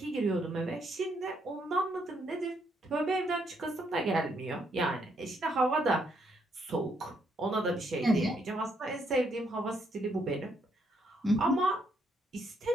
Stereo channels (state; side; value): normal; both; correlation 0.74